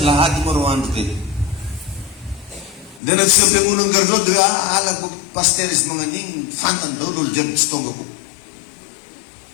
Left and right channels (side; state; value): right; drops out; at 3.0 s